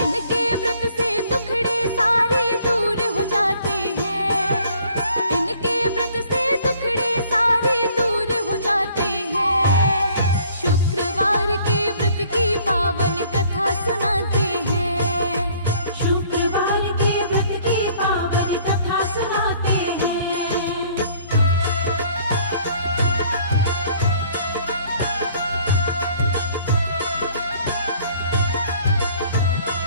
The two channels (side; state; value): both; inverted; correlation -0.58